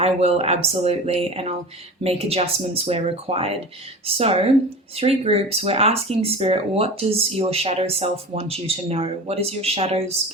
will absolutely, and I'll make adjustments where required. So 3 groups, we're asking Spirit, what does your shadow self want you to know? What is your shadow's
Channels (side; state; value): both; normal; correlation 0.33